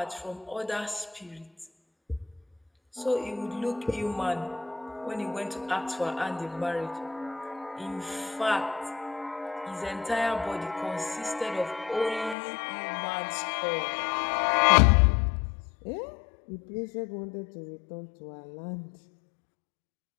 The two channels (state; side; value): drops out; right; at 12.4 s